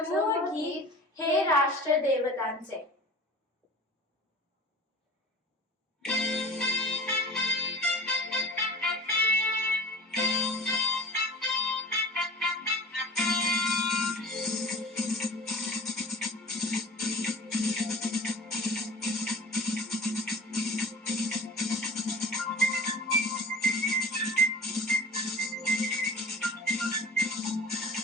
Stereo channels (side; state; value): both; normal; correlation 0.39